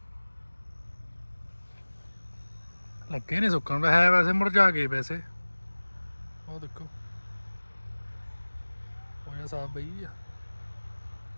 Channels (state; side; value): inverted; both; correlation -1.00